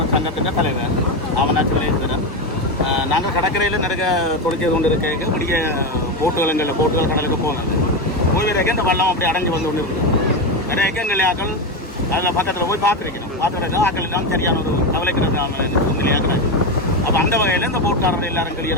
சங்கத்தின் தலைவர் ஆவணாச்சி விளையாடுகிறேன். நாங்கள் கடற்கரையில் நிறைய தொழிற்செய்து கொண்டு இருக்க முடிய போட்டுகள் கடலுக்கு போனது போய் வரைக்கும் இந்த வள்ளம் அப்படி அடைஞ்சு வந்து கொண்டு இருக்குது. நிறைய எங்கள் ஆக்கள் அதில் பக்கத்தில் போய் பார்த்துருக்கணும். பார்த்துருக்க ஆக்கள் எல்லாம் சரியான ஒரு கவலைக்கிறது நிலையாகிறாங்க. அப்போ அந்த வகையில் இந்த போட்காரர்கள் எல்லாரும்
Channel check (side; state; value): both; normal; correlation 0.13